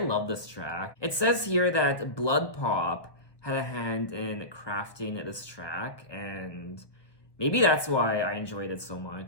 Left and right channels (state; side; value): late; right; 1.1 ms